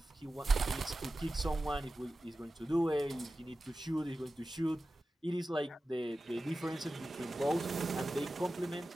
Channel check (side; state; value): both; normal; correlation 0.94